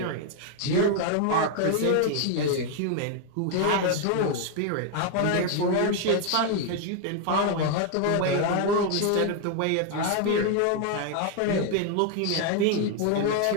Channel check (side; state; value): both; different; correlation 0.00